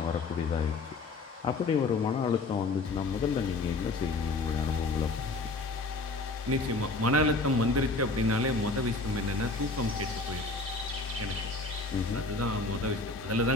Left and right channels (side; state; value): right; quieter; 3.4 dB